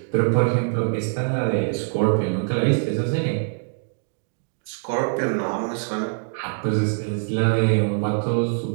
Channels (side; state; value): left; silent; digital silence